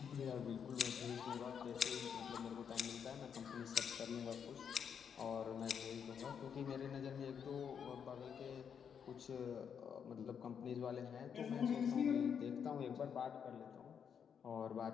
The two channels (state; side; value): quieter; right; 7.5 dB